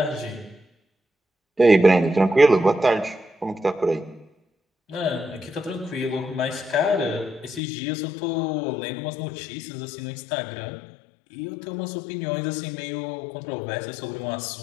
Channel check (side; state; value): right; drops out; at 7.6 s